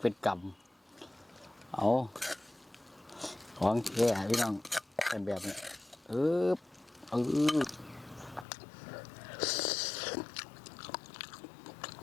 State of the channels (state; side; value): drops out; right; at 8.5 s